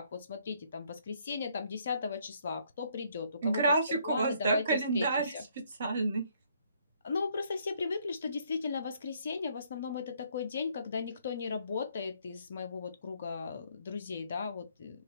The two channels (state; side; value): inverted; both; correlation -0.67